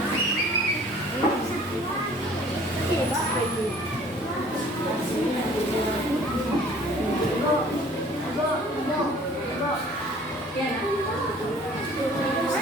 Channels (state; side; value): normal; both; correlation 0.52